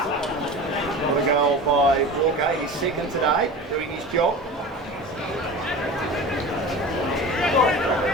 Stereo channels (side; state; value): both; normal; correlation 0.34